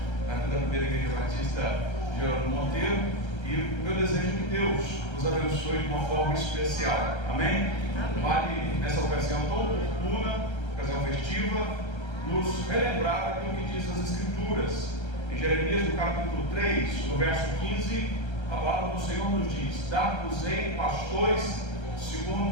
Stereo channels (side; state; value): right; late; 1.3 ms